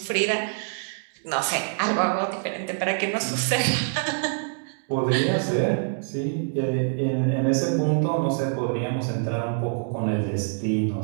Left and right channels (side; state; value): left; silent; 62 dB below the other